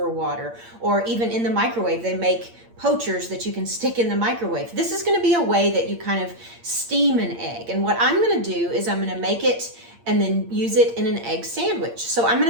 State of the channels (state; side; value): late; left; 8.7 ms